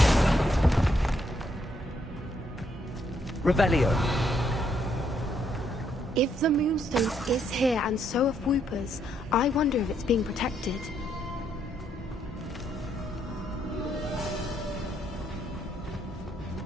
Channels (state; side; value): normal; both; correlation 0.74